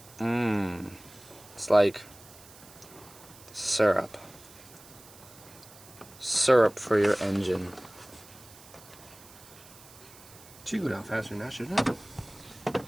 Mmm. It's like syrup. Syrup for your engine. It should go down faster than that, shouldn't it?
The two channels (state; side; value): noise; right; hiss, 21 dB below the sound